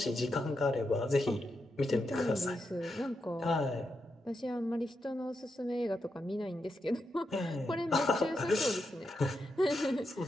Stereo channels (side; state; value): both; normal; correlation 0.85